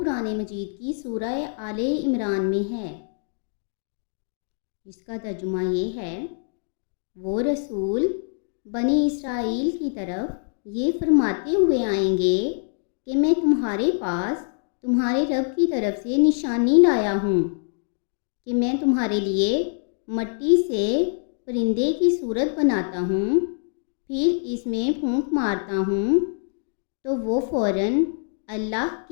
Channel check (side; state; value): right; silent; digital silence